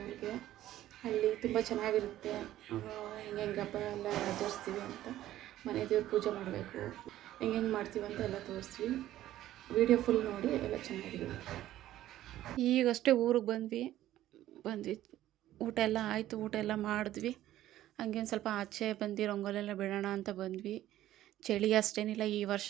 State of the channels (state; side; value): quieter; left; 13.7 dB